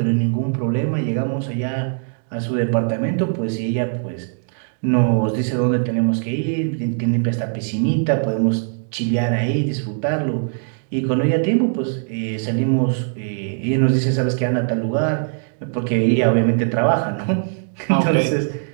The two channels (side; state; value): left; silent; 65 dB below the other